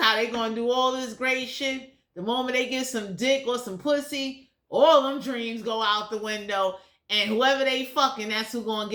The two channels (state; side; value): identical; both; correlation 1.00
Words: they going to do all this great shit. The moment they get some dick or some pussy, all them dreams go out the window. And whoever they fucking, that's who going to